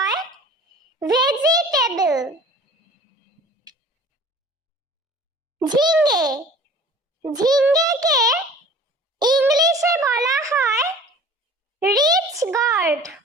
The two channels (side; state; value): both; normal; correlation 0.46